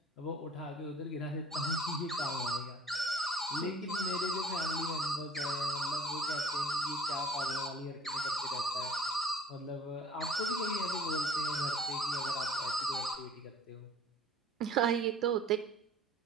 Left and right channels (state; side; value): normal; both; correlation 0.50